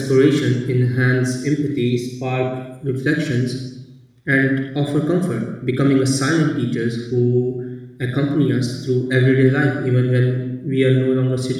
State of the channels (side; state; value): both; identical; correlation 1.00